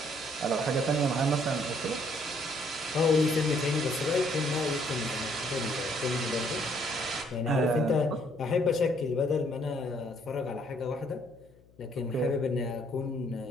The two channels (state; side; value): noise; left; hum, 28 dB below the sound